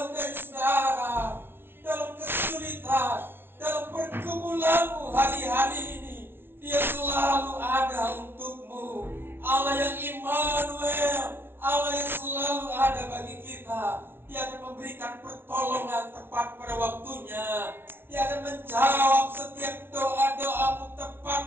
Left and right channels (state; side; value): late; left; 0.11 ms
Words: dari saudara. Dalam kesulitan, dalam pergumulanmu hari-hari ini, Dia selalu ada untukmu. Allah yang Immanuel, Allah yang selalu ada bagi kita. Dia akan memberikan pertolongan tepat pada waktunya. Dia akan menjawab setiap doa-doamu